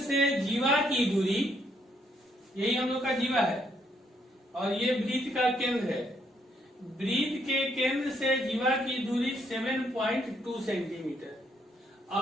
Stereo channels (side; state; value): both; normal; correlation 0.71